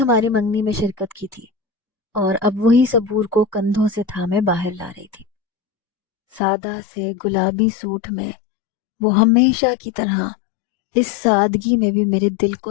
منگنی میں شرکت کی تھی اور اب وہی صبور کو کندھوں سے تھامے باہر لا رہی تھی۔ سادہ سے گلابی سوٹ میں وہ ہمیشہ کی طرح اس سادگی میں بھی میرے دل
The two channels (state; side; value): drops out; right; at 6.4 s